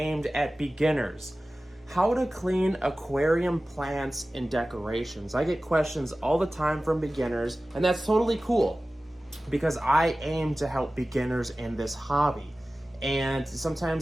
at beginners. How to clean aquarium plants and decorations. I get questions all the time from beginners, and that's totally cool because I aim to help beginners in this hobby. And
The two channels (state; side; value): normal; both; correlation 0.96